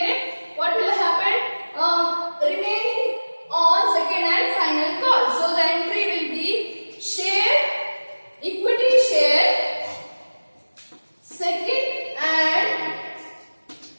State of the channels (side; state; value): both; inverted; correlation -1.00